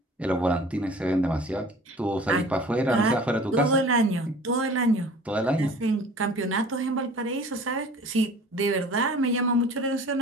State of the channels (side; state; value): both; normal; correlation 0.46